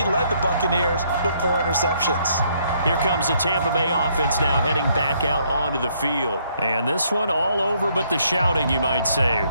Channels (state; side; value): inverted; both; correlation -0.69